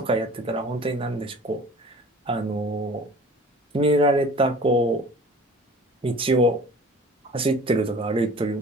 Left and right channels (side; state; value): both; normal; correlation 0.44